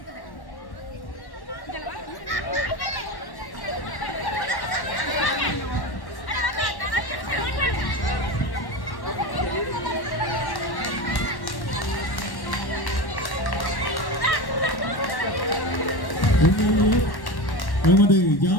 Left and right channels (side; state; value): right; late; 1.1 ms